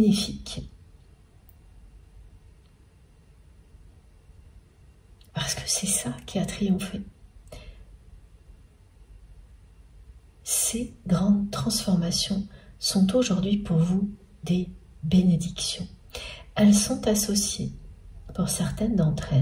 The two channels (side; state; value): both; identical; correlation 1.00